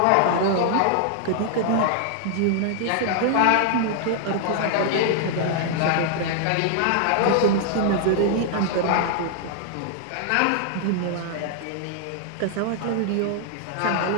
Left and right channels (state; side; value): different; both; correlation 0.00